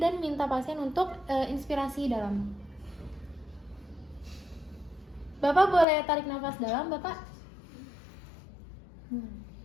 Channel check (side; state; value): right; drops out; at 5.9 s